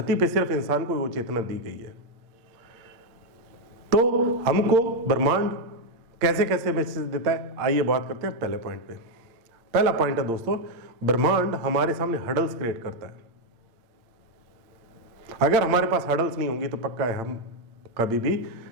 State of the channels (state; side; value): late; left; 8.7 ms